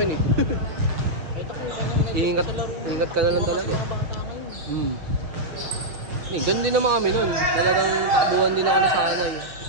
eh. Ingat ka na lang talaga. Ganun din naman kami nun. Talagang takbuhan din ako nasanay.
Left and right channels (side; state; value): left; late; 6.5 ms